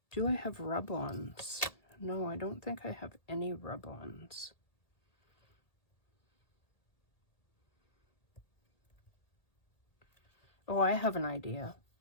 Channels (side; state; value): right; late; 1.8 ms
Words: do I have rub-ons? No, I don't think I have any rub-ons. Oh, I have an idea.